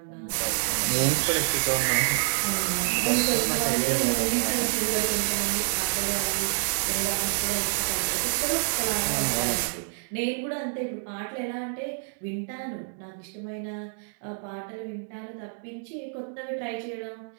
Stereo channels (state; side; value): silent; left; digital silence